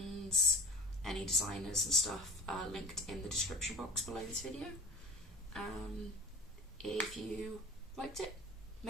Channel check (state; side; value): normal; both; correlation 0.42